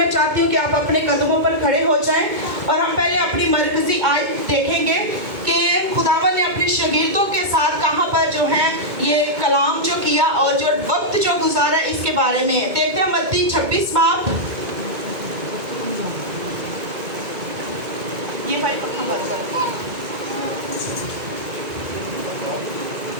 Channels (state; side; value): late; left; 2.2 ms